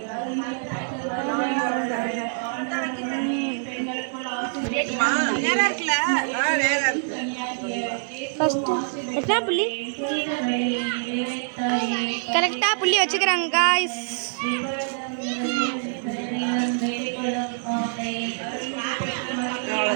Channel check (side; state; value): left; silent; digital silence